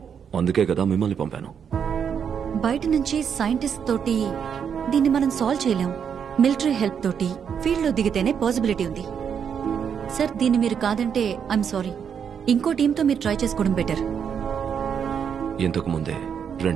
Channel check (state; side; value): quieter; left; 7.5 dB